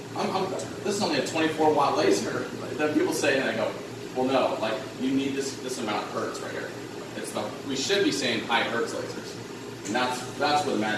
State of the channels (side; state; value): both; identical; correlation 1.00